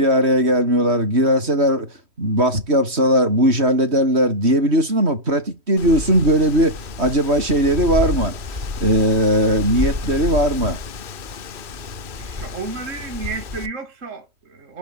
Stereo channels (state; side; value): late; left; 3.1 ms